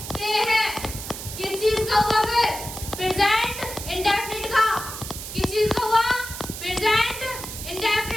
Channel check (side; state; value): right; noise; hiss, 9 dB below the sound